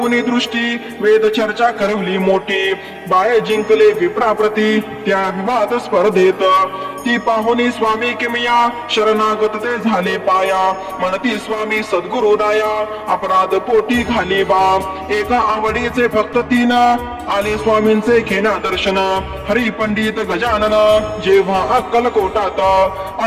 दृष्टी वेद चर्चा करवली मोठी बाळे जिंकले विप्राप्रती त्या विवाद स्पर्धेत ती पाहुनी स्वामी किमिया शरणागत ते झाले पाया म्हणती स्वामी सद्गुरु राया अपराध पोटी घाली बा एका आवडीचे भक्त तीन आले स्वामींचे घेण्या दर्शन हरी पंडित गजानन जेव्हा अक्कलकोटात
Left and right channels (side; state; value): both; identical; correlation 1.00